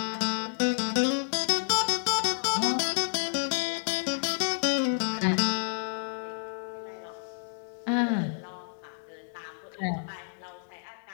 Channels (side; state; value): right; silent; digital silence